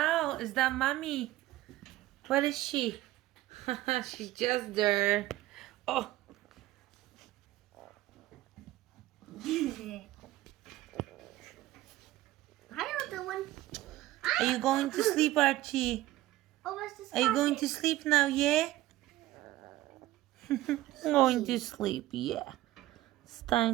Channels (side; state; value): left; quieter; 16.2 dB